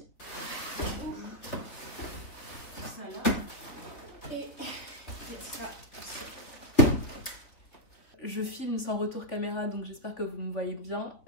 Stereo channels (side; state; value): right; late; 3.8 ms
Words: Ça là. Et ça. Je filme sans retour caméra, donc j'espère que vous me voyez bien,